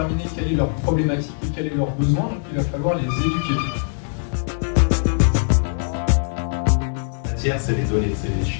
quelle est leur problématique et quel est leur besoin, donc il va falloir les éduquer. La matière, c'est les données, c'est les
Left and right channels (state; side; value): silent; right; 65 dB below the other